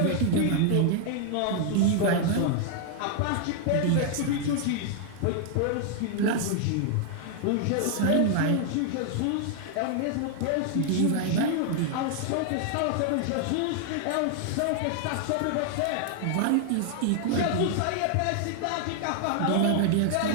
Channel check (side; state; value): both; different; correlation 0.00